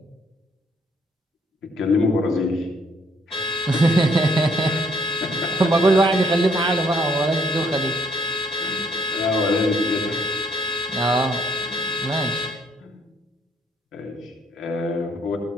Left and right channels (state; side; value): normal; both; correlation 0.68